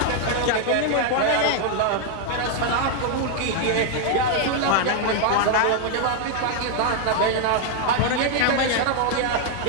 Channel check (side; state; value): both; different; correlation 0.00